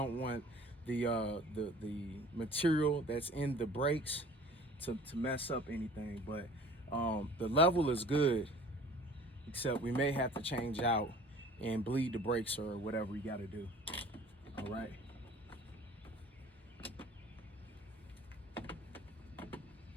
want the material that's in the brakes to mess up anything. But the level is good, except we may have to change out and bleed the brakes or whatever we got to do. All right.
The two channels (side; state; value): both; normal; correlation 0.48